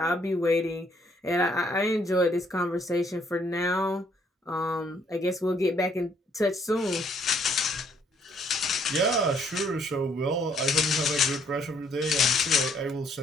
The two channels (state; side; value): normal; both; correlation 0.67